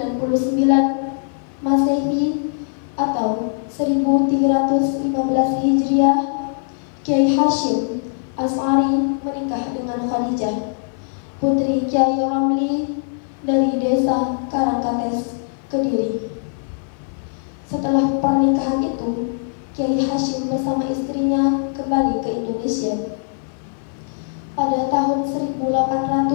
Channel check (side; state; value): right; silent; 55 dB below the other